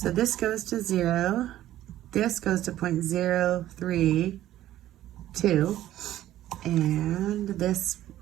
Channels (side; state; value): left; quieter; 13.5 dB